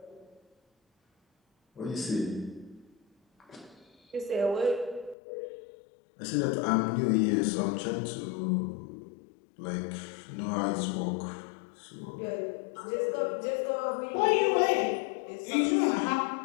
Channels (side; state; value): right; drops out; at 5.2 s